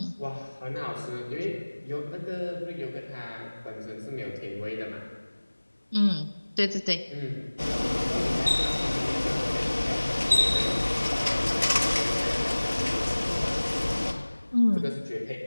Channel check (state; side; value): inverted; both; correlation -1.00